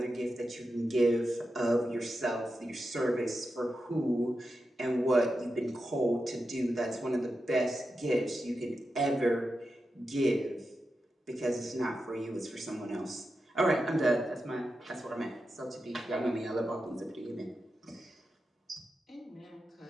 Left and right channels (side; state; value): both; normal; correlation 0.89